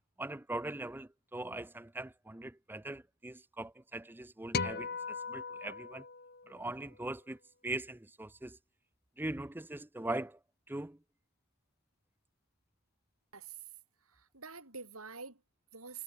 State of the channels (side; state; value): both; normal; correlation 0.41